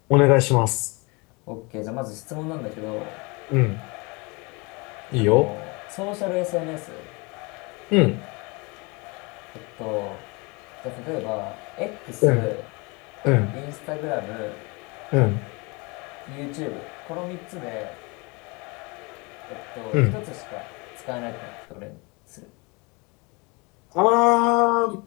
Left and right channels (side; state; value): right; quieter; 28.3 dB